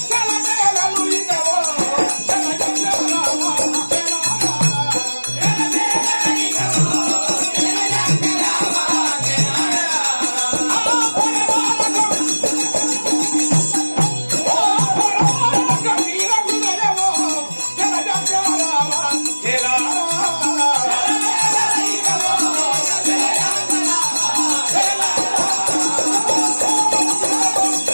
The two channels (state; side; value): inverted; both; correlation -1.00